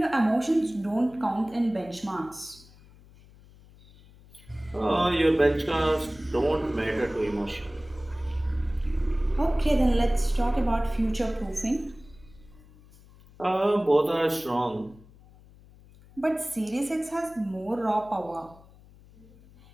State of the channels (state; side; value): noise; left; hum, 24 dB below the sound